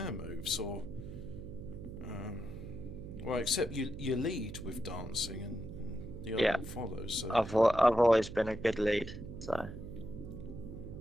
moves, or. Well, except you lead with dancing and the other one follows. So I've always been a good lead, so.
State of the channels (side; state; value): right; noise; hum, 10 dB below the sound